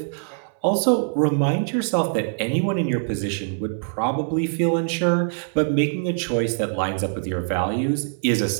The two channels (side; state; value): left; silent; 63 dB below the other